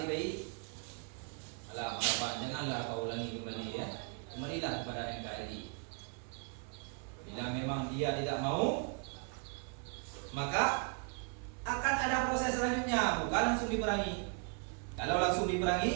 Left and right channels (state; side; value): quieter; left; 37.4 dB